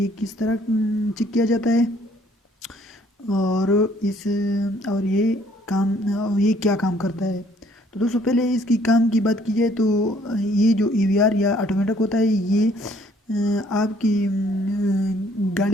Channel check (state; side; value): normal; both; correlation 0.62